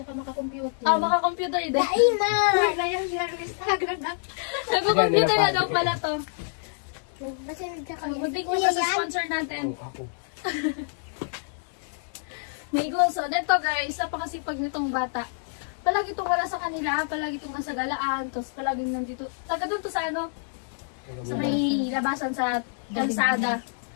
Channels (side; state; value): right; silent; digital silence